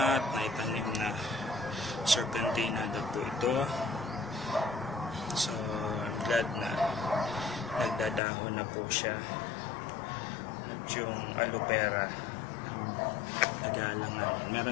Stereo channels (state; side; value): drops out; right; at 8.2 s